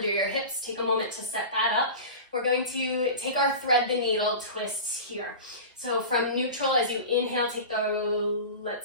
your hips, take a moment to set that up. We're going to take our thread the needle twists here. So from neutral, as you inhale, take the,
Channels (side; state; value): both; inverted; correlation -0.31